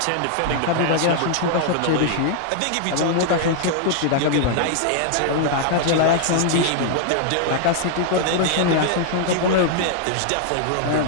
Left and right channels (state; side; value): different; both; correlation 0.00